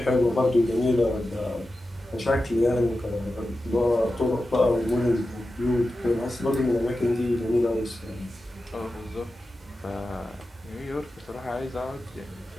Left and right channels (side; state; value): both; normal; correlation 0.92